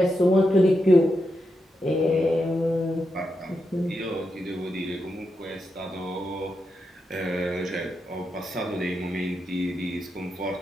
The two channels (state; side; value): normal; both; correlation 0.86